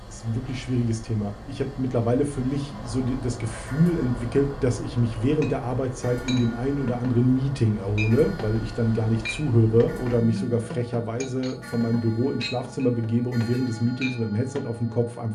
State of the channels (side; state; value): both; identical; correlation 1.00